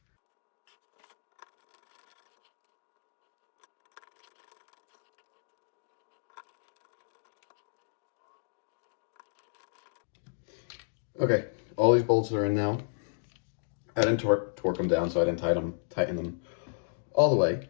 Okay, all these bolts are in now. I didn't torque them down, so I didn't tighten them all the way.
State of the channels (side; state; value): right; silent; digital silence